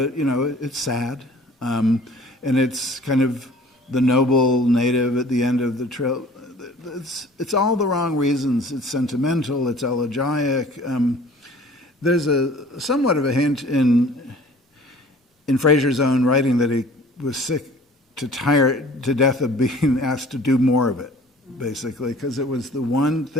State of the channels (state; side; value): normal; both; correlation 0.49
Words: It's sad, and it's kind of the noble native at the end of the trail. It's all the wrong reasons. It's sentimental. It's elegiac. There's somewhat of a hint in Fraser's own writing that he was sick to death of being asked to do more of it, basically, because it was the one